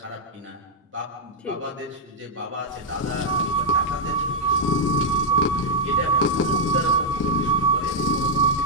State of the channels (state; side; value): normal; both; correlation -0.03